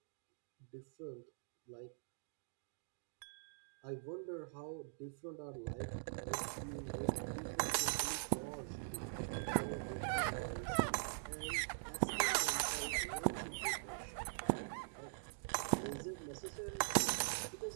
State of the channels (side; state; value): left; silent; digital silence